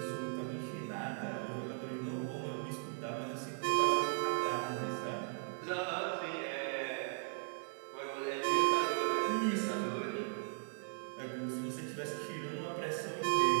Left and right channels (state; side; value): silent; left; 53 dB below the other